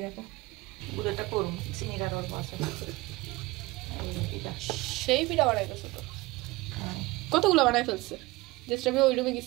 দেখো গুড়েরটা করুন, চিনির আর অল্প আছে। সেই পিঠা বানাই গেছো তো, কতগুলো বানাই ফেলছে। জাস্ট আমি ওই রুমে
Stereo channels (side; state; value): left; quieter; 21.5 dB